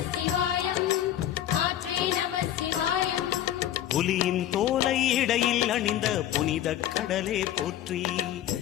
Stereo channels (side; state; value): right; quieter; 11.9 dB